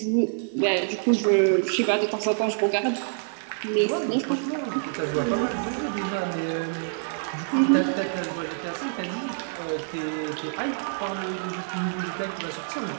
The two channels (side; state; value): left; silent; 55 dB below the other